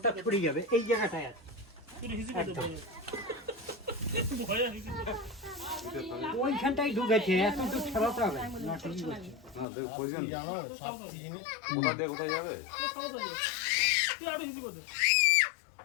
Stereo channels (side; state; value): right; drops out; at 9.7 s